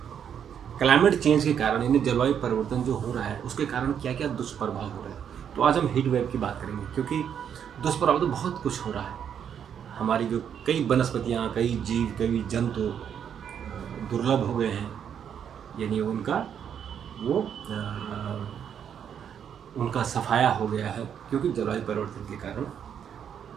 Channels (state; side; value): quieter; left; 8.4 dB